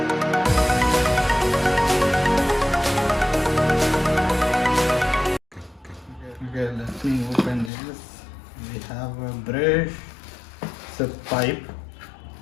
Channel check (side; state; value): right; drops out; at 7.7 s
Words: Okay, let me open this. We have a brush, it's a pipe,